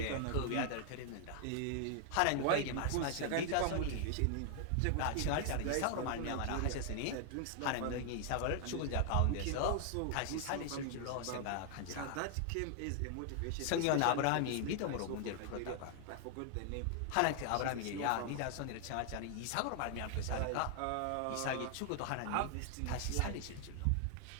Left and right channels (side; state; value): both; different; correlation 0.00